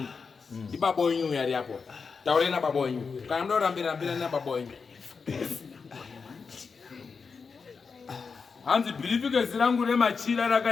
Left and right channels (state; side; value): quieter; right; 5.2 dB